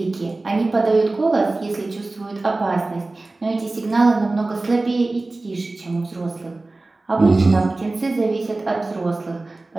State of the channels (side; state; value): left; quieter; 3.1 dB